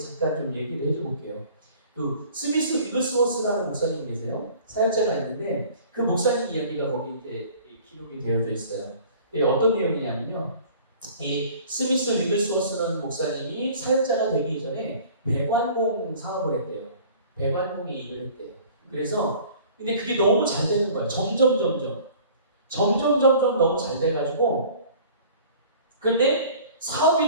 좀 얘기를 해줘볼게요. 그 스미스 위글스워스라는 목사님이 계세요. 사역자가 있는데 그 목사님 이야기가 거기 이제 기록이 되어져 있어요. 어떤 내용이냐면요. 이 스미스 위글스워스라는 목사님이 사역자가 되기 이전에 배관공 사업을 했대요. 배관공의 일을 했대요. 그래서 근데 그게 너무 잘 되는 거예요. 점점 너무 잘 돼가지고 근데 사업이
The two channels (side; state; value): both; inverted; correlation -0.48